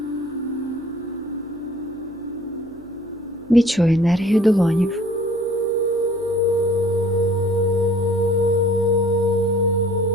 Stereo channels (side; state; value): right; noise; hum, 24 dB below the sound